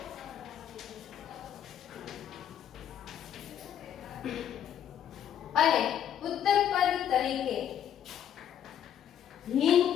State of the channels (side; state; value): right; quieter; 9.9 dB